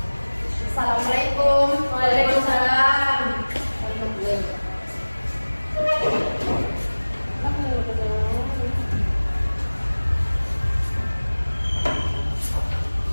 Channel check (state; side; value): inverted; both; correlation -1.00